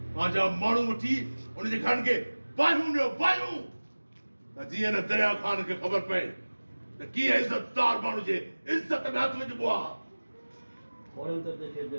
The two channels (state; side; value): inverted; both; correlation -1.00